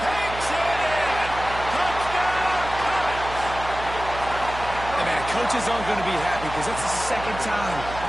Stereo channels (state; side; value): noise; right; hum, 11 dB below the sound